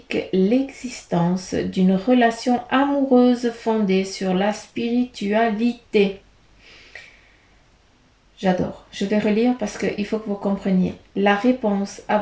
l'existence d'une relation amoureuse fondée sur la spiritualité. J'adore. Je vais relire parce qu'il faut que vous compreniez. La réponse à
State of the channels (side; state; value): both; identical; correlation 1.00